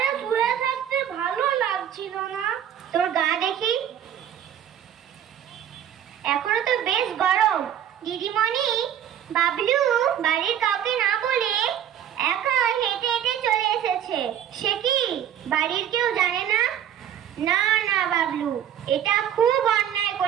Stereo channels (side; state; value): left; quieter; 9.9 dB